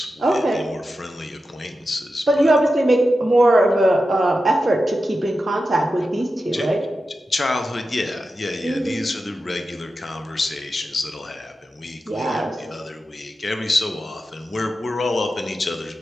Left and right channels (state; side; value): normal; both; correlation 0.91